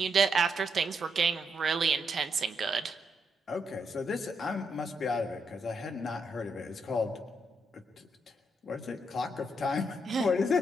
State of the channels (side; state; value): both; normal; correlation 0.78